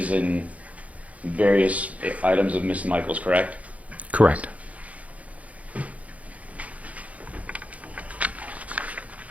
and various items of Miss Michaels, correct? Correct. I'm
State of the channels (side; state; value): left; late; 0.068 ms